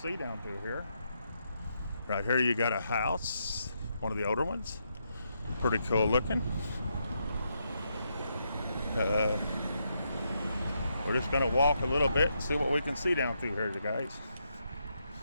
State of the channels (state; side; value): inverted; both; correlation -0.80